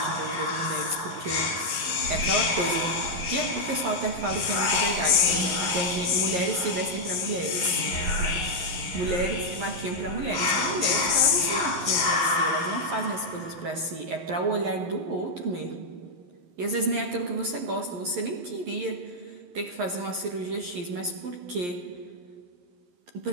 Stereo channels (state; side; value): late; left; 11 ms